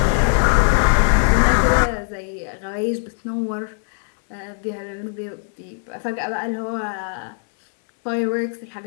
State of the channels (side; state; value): right; silent; 65 dB below the other